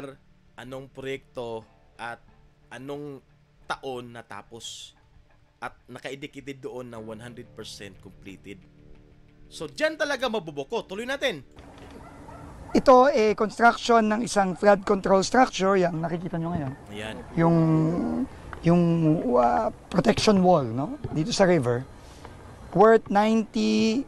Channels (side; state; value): both; identical; correlation 1.00